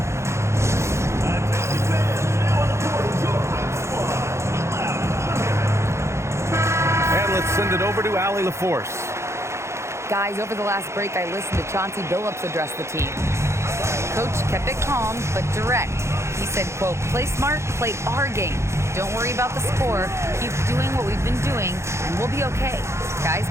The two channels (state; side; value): late; left; 0.13 ms